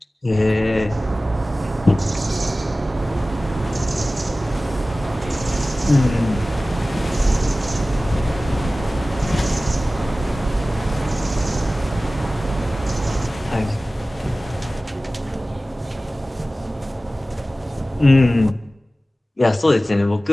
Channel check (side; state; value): both; normal; correlation 0.97